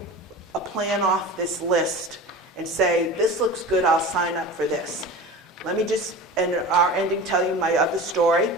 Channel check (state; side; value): normal; both; correlation 0.34